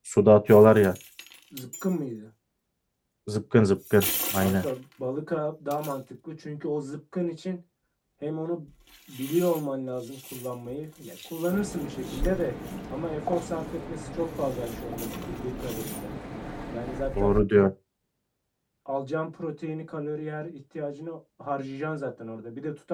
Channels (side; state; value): both; identical; correlation 1.00